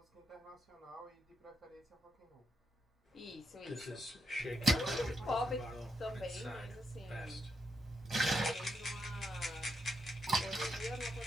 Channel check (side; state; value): both; normal; correlation 0.81